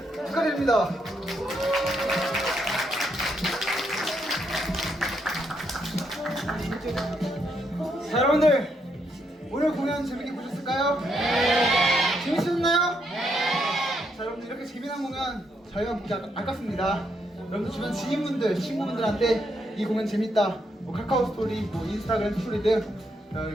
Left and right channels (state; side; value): normal; both; correlation 0.77